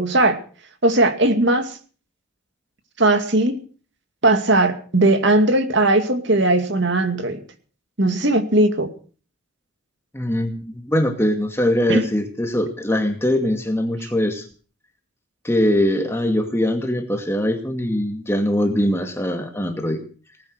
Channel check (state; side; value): normal; both; correlation 0.33